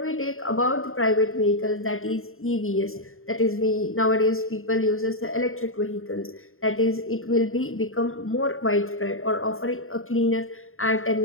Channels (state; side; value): late; right; 0.61 ms